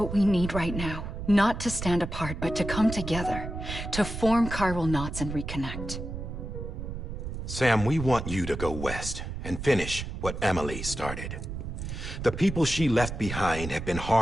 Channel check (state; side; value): noise; right; rumble, 6 dB below the sound